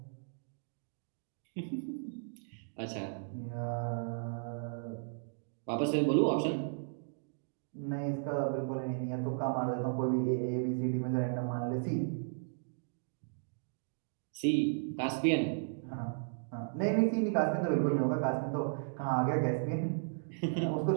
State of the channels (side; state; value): left; silent; digital silence